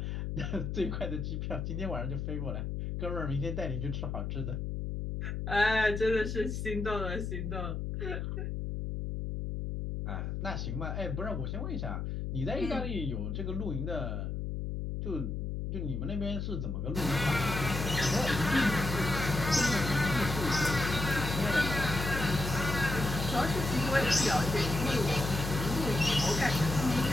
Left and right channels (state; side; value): noise; left; hum, 3 dB below the sound